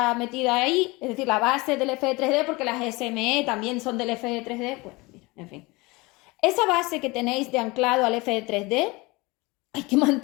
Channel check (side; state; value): right; quieter; 23.9 dB